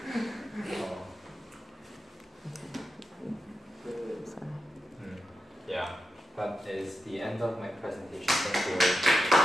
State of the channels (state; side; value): normal; both; correlation 0.89